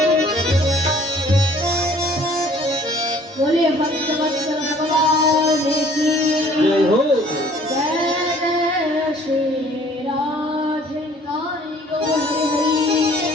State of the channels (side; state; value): both; normal; correlation 0.55